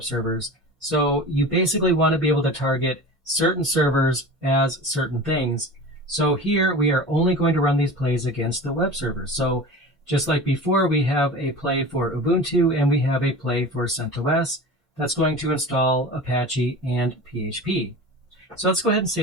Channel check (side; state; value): both; normal; correlation 0.34